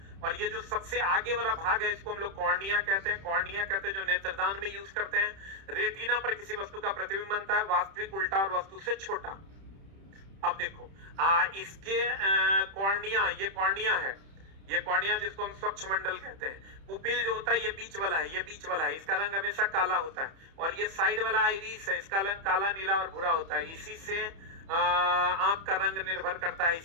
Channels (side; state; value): left; late; 31 ms